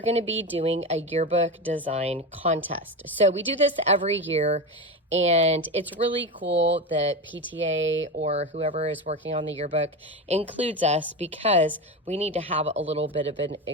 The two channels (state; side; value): normal; both; correlation 0.20